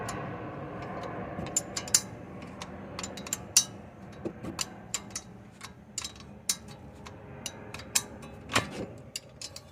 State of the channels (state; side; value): identical; both; correlation 1.00